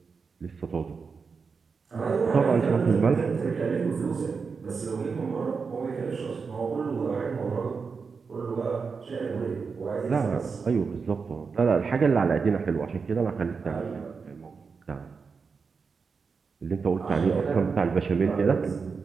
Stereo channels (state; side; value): quieter; left; 5.2 dB